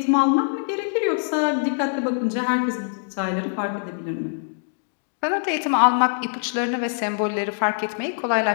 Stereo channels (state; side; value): silent; right; digital silence